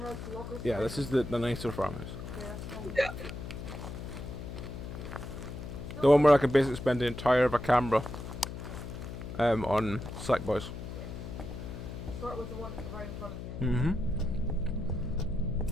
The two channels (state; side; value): noise; left; hum, 9 dB below the sound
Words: lockers. Yeah, this is the nicer farmhouse. Yeah, that's fine. Yeah. The one where I could basically spend the entire of a camera on Slackboys. Start with the one right in front of you. Mm-hmm.